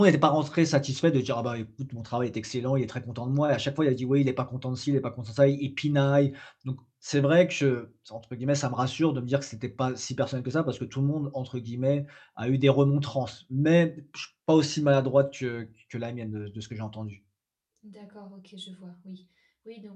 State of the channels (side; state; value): both; identical; correlation 1.00